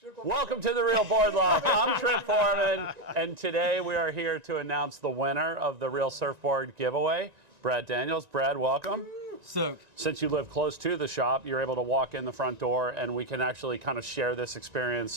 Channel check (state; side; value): late; left; 1.9 ms